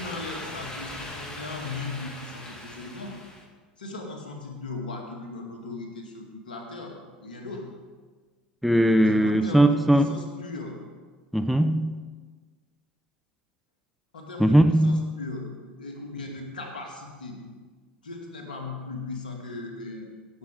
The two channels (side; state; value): both; normal; correlation 0.82